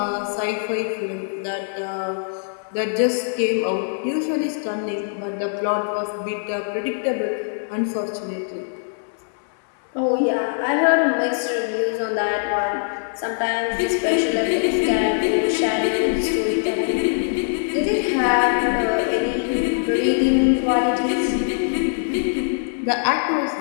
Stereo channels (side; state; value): right; silent; digital silence